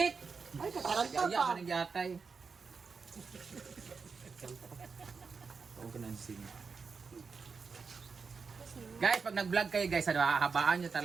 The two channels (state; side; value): quieter; left; 5.1 dB